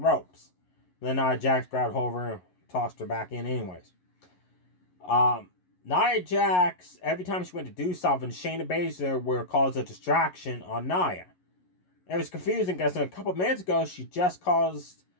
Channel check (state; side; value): late; right; 11 ms